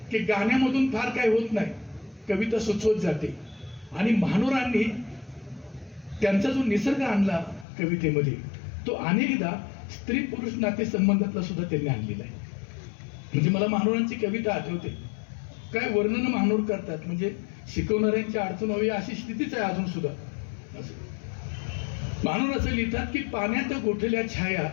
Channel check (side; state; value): right; drops out; at 7.7 s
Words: की गाण्यामधून फार काय होत नाही, कविता सुचवत जाते. आणि महानोरांनी त्यांचा जो निसर्ग आणला कवितेमध्ये तो अनेकदा स्त्री पुरुष नाते संबंधातला सुद्धा त्यांनी आणलेला आहे. म्हणजे मला महानोरांची कविता आठवते, काय वर्णन महानोर करतात, म्हणजे शिकवणाऱ्यांची अडचण व्हावी अशी स्थितीच आहे अजून सुद्धा. असं महानोर असं लिहितात की पाण्यात गोठल्या छाया